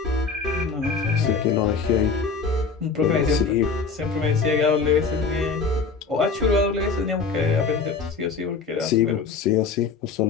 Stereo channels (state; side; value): quieter; right; 4.8 dB